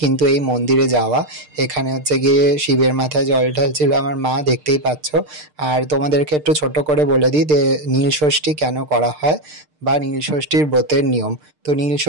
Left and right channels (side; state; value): left; late; 6.6 ms